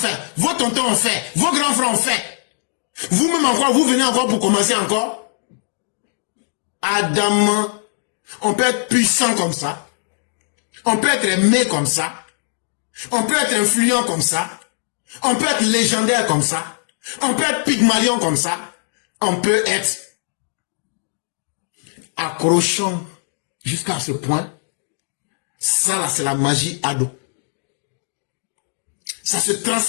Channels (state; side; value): silent; right; digital silence